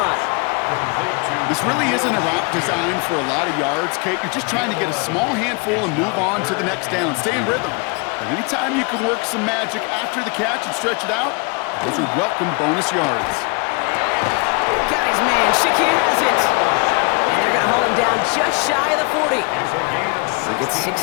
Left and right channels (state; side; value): quieter; right; 30.9 dB